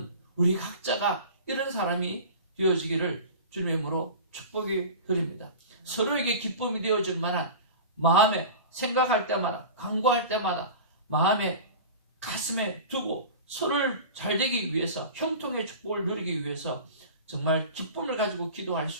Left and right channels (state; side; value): inverted; both; correlation -0.35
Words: 우리 각자가 이런 사람이 되어지기를 주님으로 축복이 드립니다. 서로에게 기쁨이 되어줄 만한 마음에 생각할 때마다, 간구할 때마다 마음에, 가슴에 두고 서로를 잘 되기 위해서, 형통의 축복을 누리기 위해서 정말 기쁨을 가지고 기도할